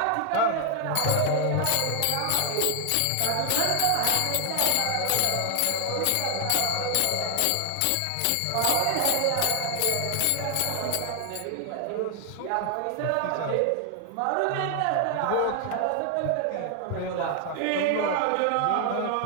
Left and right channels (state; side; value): different; both; correlation 0.00